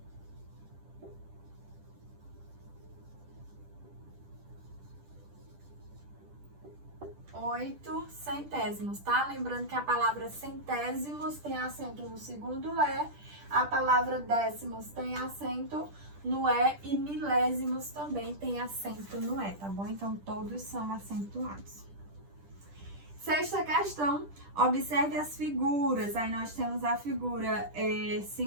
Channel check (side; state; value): left; late; 10 ms